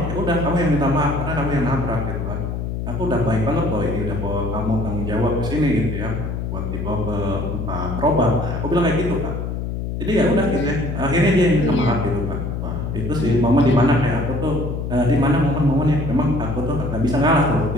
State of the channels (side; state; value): left; noise; hum, 4 dB below the sound